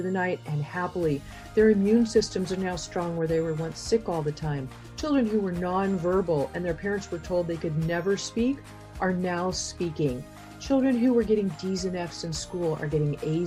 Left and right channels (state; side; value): identical; both; correlation 1.00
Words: the night and happily. Their immune systems are now strong where they were once sick all the time. Children who were nonverbal and their parents were told they could never speak are now speaking. Children who were getting D's and F's in school are getting